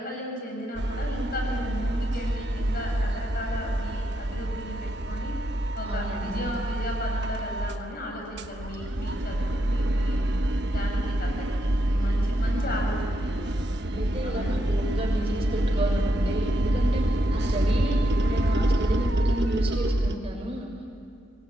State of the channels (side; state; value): both; normal; correlation 0.81